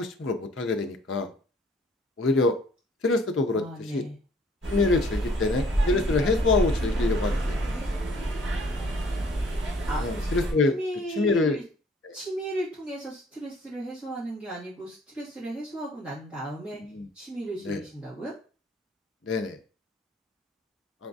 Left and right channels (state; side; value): normal; both; correlation 0.58